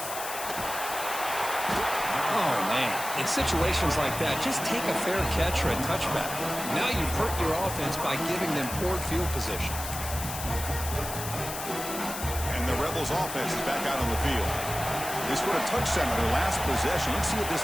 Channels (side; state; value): left; noise; hiss, 7 dB below the sound